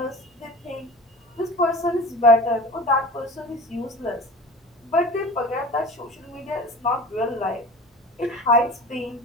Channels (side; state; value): both; normal; correlation 0.37